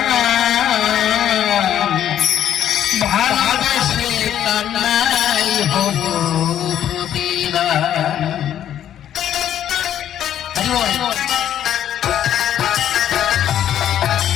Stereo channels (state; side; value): quieter; right; 10.6 dB